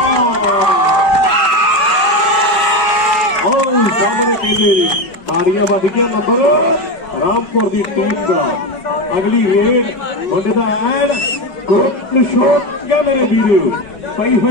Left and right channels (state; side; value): late; right; 5.0 ms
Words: सामने कहते बाड़ियां बढ़ गया नंबर रामपुर की टीम का अगली रेड मुंडे का एन ग्रुप शोक क्या मेरे वीरो पई